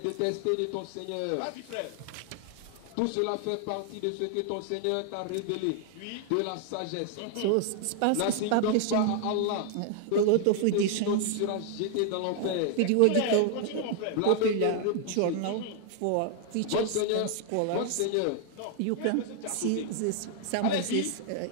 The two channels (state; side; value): different; both; correlation 0.00